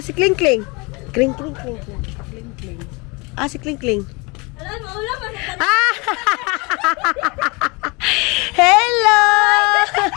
Si Kling Kling. Kling Kling Kling Kling. Kling Kling. Si Kling Kling. Hello!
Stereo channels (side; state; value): right; quieter; 28.0 dB